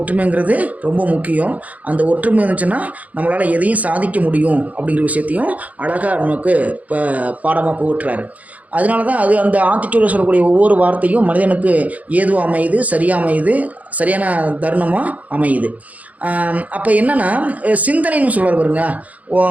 ரொம்ப முக்கியம். அந்த ஒற்றுமை இருந்துச்சுன்னா நம்மளால் எதையும் சாதிக்க முடியும் அப்படிங்கிற விஷயத்தையும் அழகாக நமக்கு இப்போ பாடமாக புகட்டுறாரு. அதனால தான் அந்த ஆத்திச்சூடில் சொல்லக்கூடிய ஒவ்வொரு வார்த்தையும் மனிதனுக்கு ஏதுவாக அமையுது, சரியாக அமையுது, சரியான தருணமாக அமையுது. அப்போ என்னென்னா சிந்தனைன்னு சொல்கிறார் பாருங்க.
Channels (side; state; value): left; late; 0.073 ms